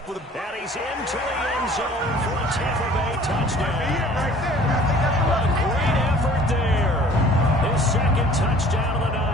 with a... And he's into the end zone for a Tampa Bay touchdown. A great effort there. His 2nd touchdown of the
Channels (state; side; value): normal; both; correlation 0.51